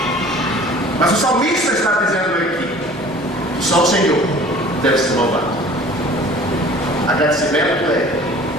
Mas o salmista está dizendo aqui: só o Senhor deve ser louvado. Agradecimento é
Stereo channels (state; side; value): normal; both; correlation 0.47